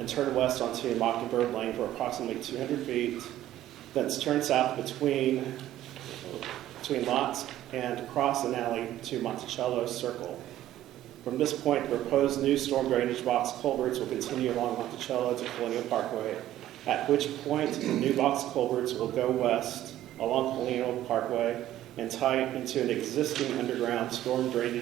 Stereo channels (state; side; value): quieter; left; 13.3 dB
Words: turn west onto Mockingbird Lane for approximately 200 feet. Thence turn south between lots and cross an alley to Monticello Circle. From this point, the proposed new storm drainage box culverts will continue along Monticello to Colonial Parkway, at which point the new box culverts will go west along Colonial Parkway and tie into an existing underground storm